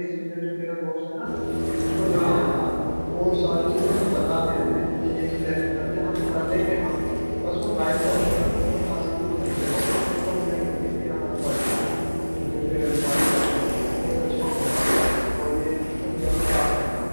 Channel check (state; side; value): inverted; both; correlation -1.00